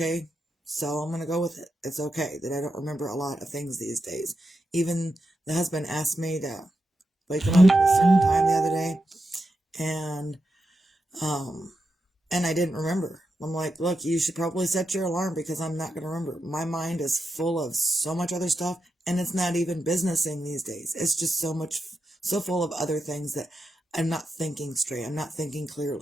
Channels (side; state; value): both; normal; correlation 0.87